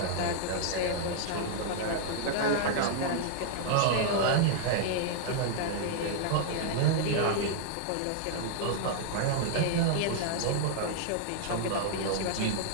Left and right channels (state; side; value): different; both; correlation -0.01